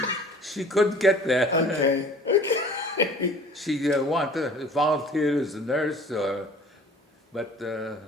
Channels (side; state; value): both; normal; correlation 0.47